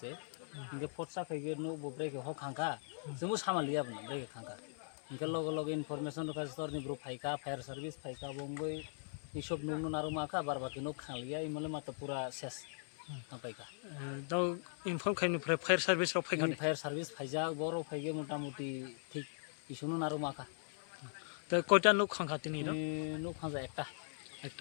se. Engke forsa kayak nu bobrek ho khangka. Sungguh sama lihat benar brek khangka. Engke logo information ro kastor ni bro phaika fire service phaika bongoi. Isop nunu naru maka bar baki nuk khalia imale mata pura ses tampaika দাও inform খাইনি fire service র ফাইখানে fire service ফাইজা বড় ফাইগে মোটামুটি ঠিক ইসুনো নারু মাকা তো কয়টা nook খাঙ্খা তিনি র nuk খাজা একটা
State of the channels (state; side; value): silent; right; 51 dB below the other